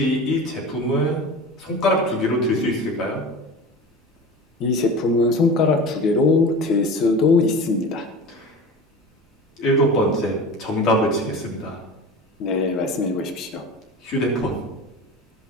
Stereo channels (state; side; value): normal; both; correlation 0.34